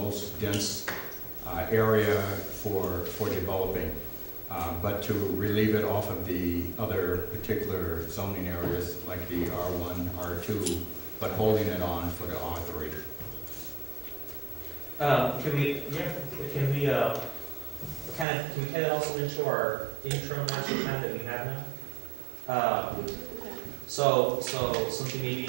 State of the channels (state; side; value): drops out; left; at 18.2 s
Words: most dense area for developing, but to relieve it off of the other particular zoning areas like the R1, R2, but holding it on for the R3. Can we kind of also into our interim master plan that we have now? So something maybe